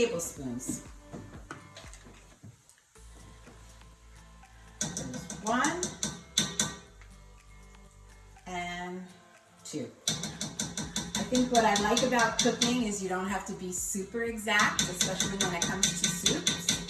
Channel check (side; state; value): both; identical; correlation 1.00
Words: There's 1 and 2. I think what I like about cooking is you don't have to be super exact, especially when it comes to